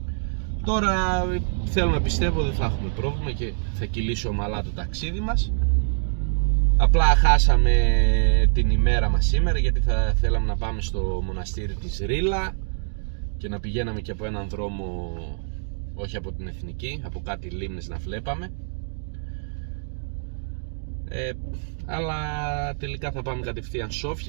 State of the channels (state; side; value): silent; left; digital silence